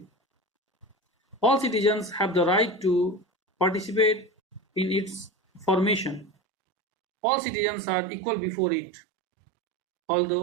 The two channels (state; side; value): drops out; left; at 6.3 s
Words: All citizens have the right to participate in its formation. All citizens are equal before it.